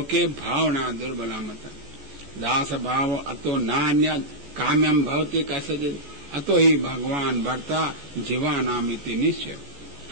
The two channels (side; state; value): left; late; 14 ms